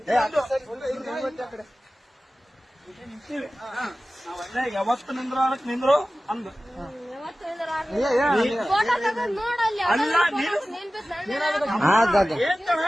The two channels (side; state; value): both; normal; correlation 0.96